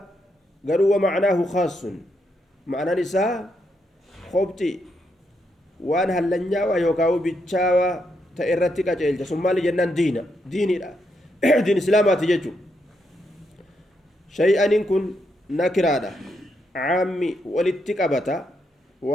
قالوا ومعناه خاص معنى نساء خبتي وان هلنيا ويوكاو بيتشاوا تأرتي كاجيل ثم لجنان ديني لا دين اسلامات جتو شيئا إن كن نكرادا عامي ولتكبتا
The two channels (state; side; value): normal; both; correlation 0.80